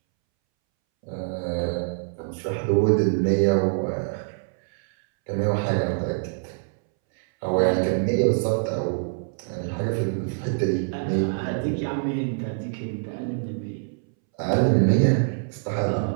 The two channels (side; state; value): left; silent; 62 dB below the other